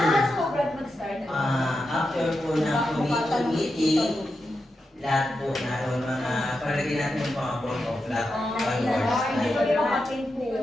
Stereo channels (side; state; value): both; normal; correlation 0.88